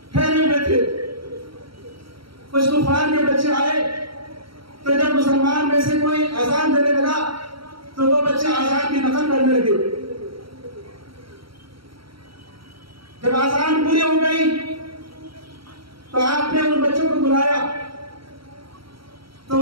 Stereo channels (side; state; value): left; late; 0.74 ms